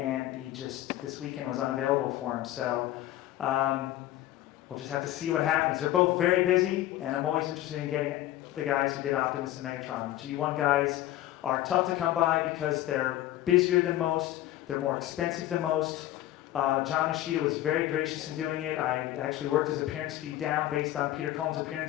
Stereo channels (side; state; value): right; quieter; 14.4 dB